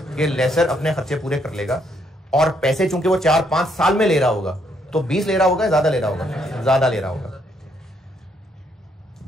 कि लेसर अपने खर्चे पूरे कर लेगा, और पैसे चूंकि वो 4-5 साल में ले रहा होगा तो 20 ले रहा होगा, ज्यादा ले रहा होगा? ज्यादा ले रहा होगा।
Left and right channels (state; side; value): normal; both; correlation 0.72